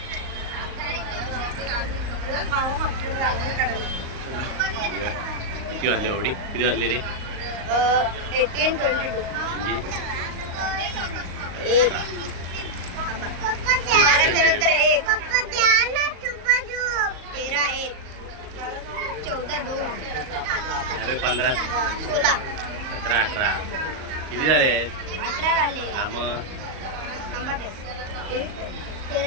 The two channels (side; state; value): left; late; 38 ms